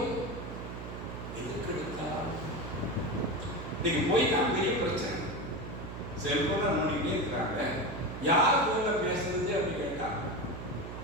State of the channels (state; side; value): noise; right; hum, 9 dB below the sound